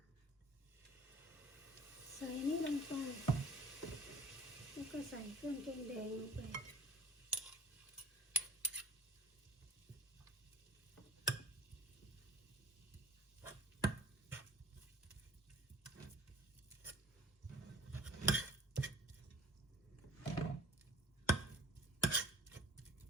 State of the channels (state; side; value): normal; both; correlation 0.47